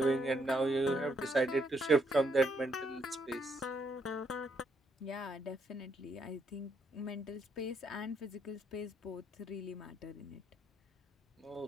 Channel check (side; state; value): both; normal; correlation 0.74